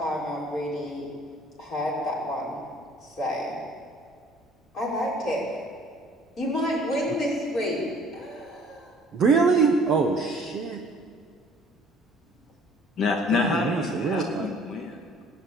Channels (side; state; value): both; normal; correlation 0.55